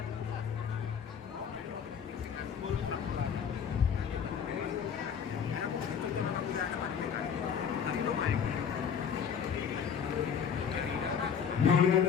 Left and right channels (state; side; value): quieter; right; 7.4 dB